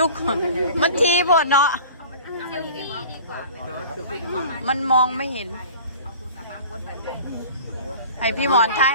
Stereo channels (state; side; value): inverted; both; correlation -0.42